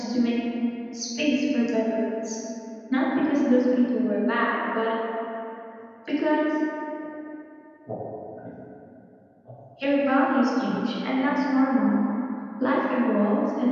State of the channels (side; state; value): both; identical; correlation 1.00